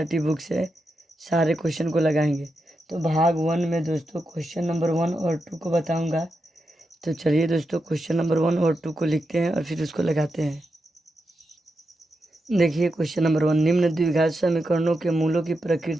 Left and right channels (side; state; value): both; normal; correlation 0.87